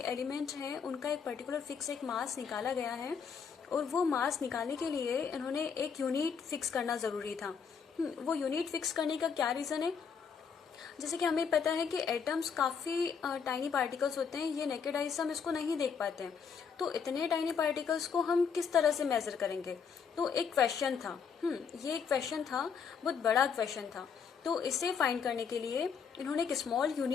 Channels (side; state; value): right; quieter; 6.4 dB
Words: एलिमेंट हैं उनका एक पर्टिकुलर फिक्स एक मास निकाला गया है, और वो मास निकालने के लिए इन्होंने एक यूनिट फिक्स करना जरूरी था. वो यूनिट फिक्स करने का क्या रीजन है, जैसे कि हमें पता है कि एटम्स काफी टाइनी पार्टिकल्स होते हैं. ये नेकेड आई से हम इसको नहीं देख पाते हैं. तो इतने टाइनी पार्टिकल्स को हम किस तरह से मेजर करेंगे, तो एक क्वेश्चन था. ये एक क्वेश्चन था, बहुत बड़ा क्वेश्चन था. तो इसे फाइंड करने के लिए इन्होंने एक स्मॉल